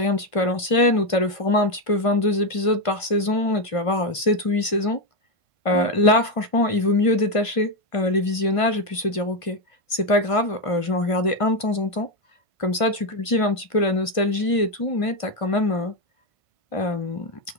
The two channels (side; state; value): right; late; 1.5 ms